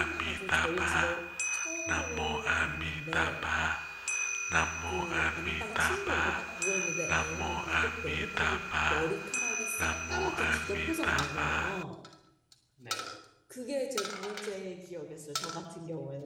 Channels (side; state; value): both; identical; correlation 1.00